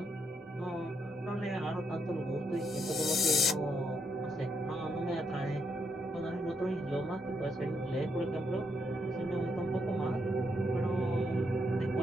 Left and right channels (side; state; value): both; normal; correlation 0.77